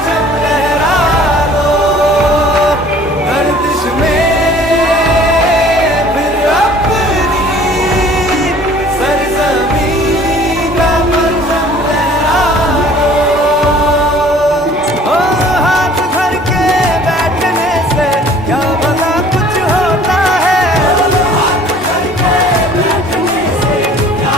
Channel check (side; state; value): both; normal; correlation 0.52